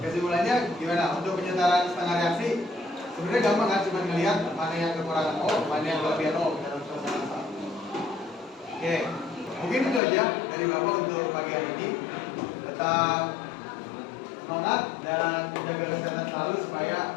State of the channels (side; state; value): right; drops out; at 10.0 s